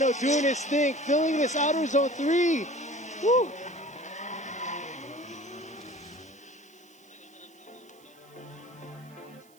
doing his thing, filling this outer zone 3. Woo!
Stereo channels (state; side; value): noise; right; hiss, 29 dB below the sound